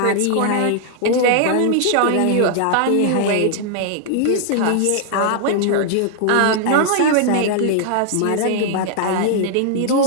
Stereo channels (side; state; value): both; different; correlation -0.01